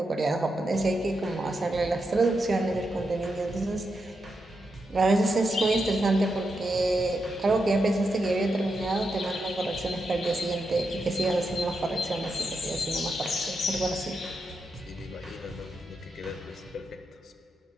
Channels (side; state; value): both; normal; correlation 0.85